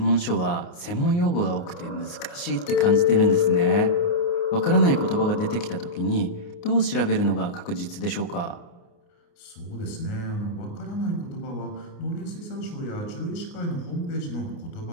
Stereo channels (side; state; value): right; late; 29 ms